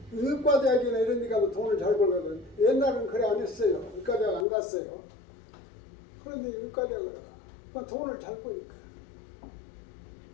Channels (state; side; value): drops out; right; at 4.5 s